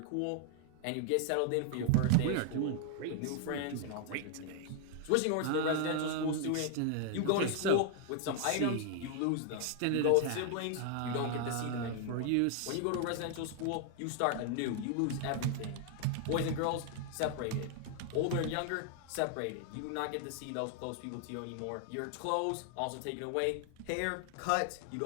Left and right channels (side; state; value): both; different; correlation 0.00